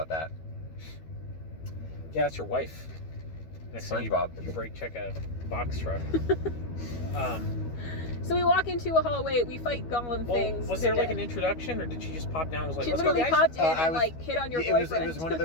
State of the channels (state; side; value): late; right; 12 ms